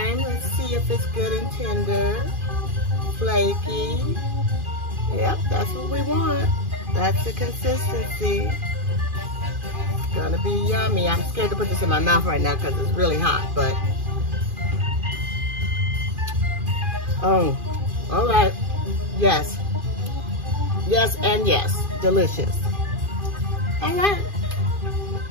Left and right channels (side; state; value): left; late; 2.4 ms